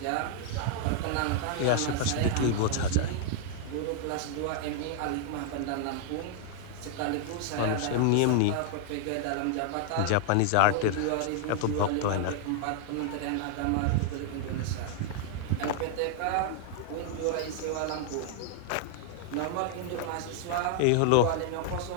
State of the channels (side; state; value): both; different; correlation 0.00